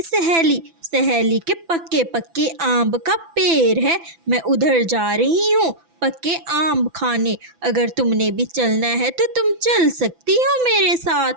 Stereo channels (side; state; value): left; late; 6.0 ms